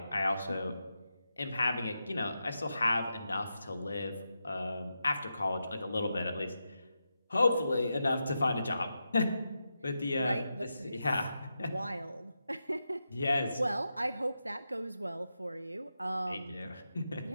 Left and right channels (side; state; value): both; inverted; correlation -0.88